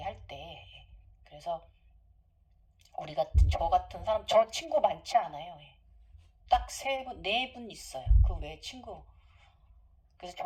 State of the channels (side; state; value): both; identical; correlation 1.00